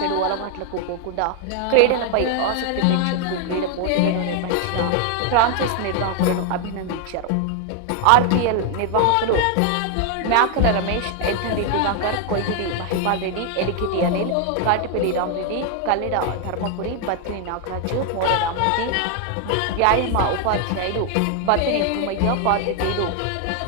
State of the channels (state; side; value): different; both; correlation 0.00